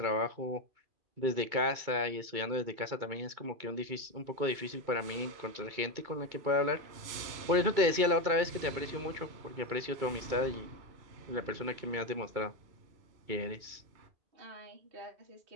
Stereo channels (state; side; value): late; left; 2.2 ms